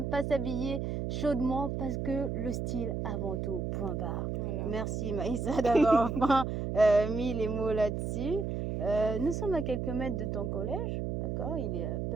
pas s'habiller chaudement parce que le style avant tout, point barre. Voilà. Merci Maïssa d'avoir enfin mis les mots là-dessus. Nous sommes à quelques mètres de ton collège, d'accord? Il est à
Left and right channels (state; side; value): noise; right; hum, 2 dB below the sound